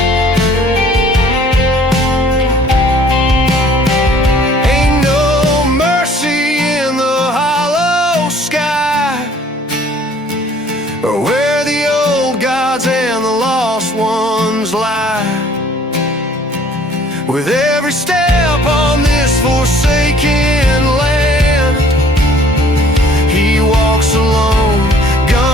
Ain't no mercy in the hollow sky, or where the old gods and the lost ones lie. With every step on this forsaken land, he walks alone,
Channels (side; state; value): both; normal; correlation 0.55